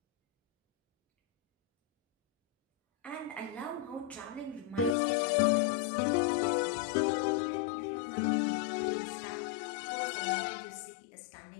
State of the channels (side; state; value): right; drops out; at 5.0 s